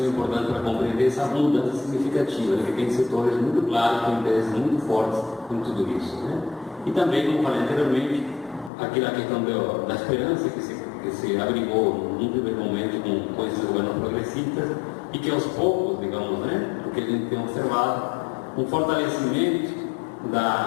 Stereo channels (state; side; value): drops out; right; at 8.7 s